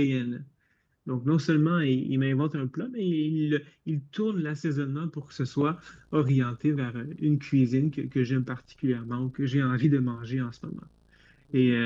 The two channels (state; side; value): identical; both; correlation 1.00